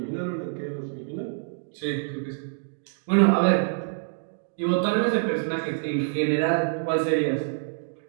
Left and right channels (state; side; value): silent; left; digital silence